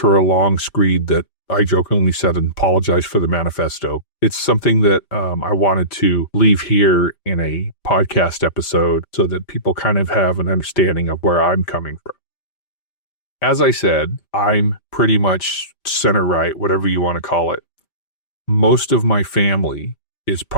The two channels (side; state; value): right; late; 5.0 ms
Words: her a long screed that I jokingly said and apologized for the manifesto. It's something that I wanted to leave here in a podcast episode so that people kind of have an understanding of where I'm coming from. As I said, I'm pretty much center right, whatever you want to call it. Most of my family is